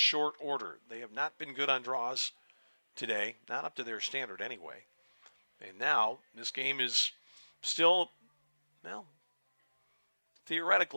order. They have not been good on draws today, not up to their standard anyway. And now this game is still, well,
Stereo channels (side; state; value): both; inverted; correlation -1.00